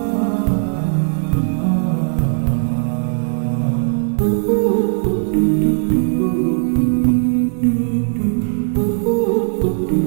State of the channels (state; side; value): silent; left; 57 dB below the other